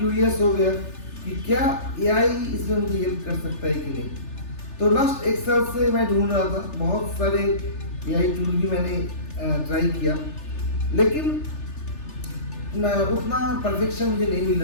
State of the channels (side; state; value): right; late; 3.3 ms